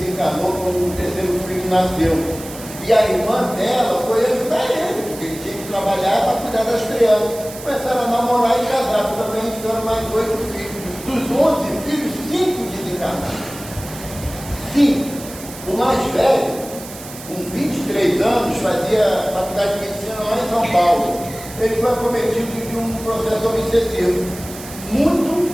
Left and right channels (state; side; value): noise; right; hiss, 14 dB below the sound